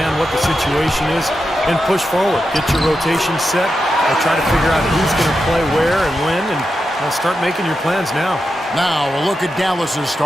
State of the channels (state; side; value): normal; both; correlation 0.88